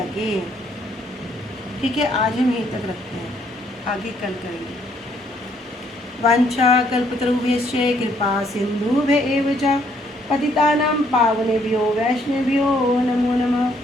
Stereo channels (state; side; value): normal; both; correlation 0.68